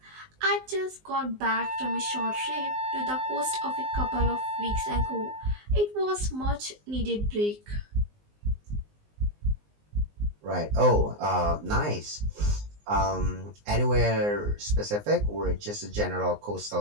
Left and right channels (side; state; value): left; late; 19 ms